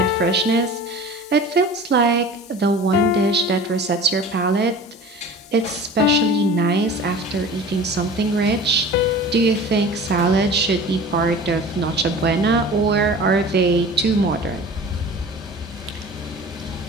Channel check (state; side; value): normal; both; correlation 0.39